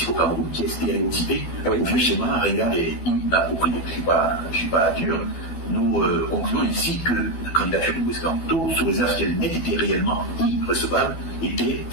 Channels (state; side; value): late; right; 12 ms